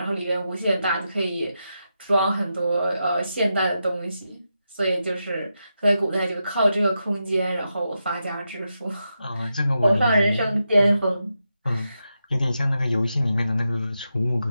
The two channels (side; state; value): both; inverted; correlation -0.87